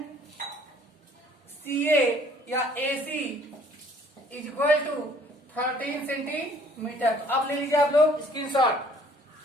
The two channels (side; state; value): both; normal; correlation 0.58